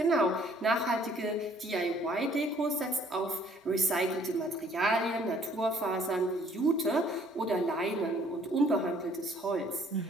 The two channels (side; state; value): both; normal; correlation 0.61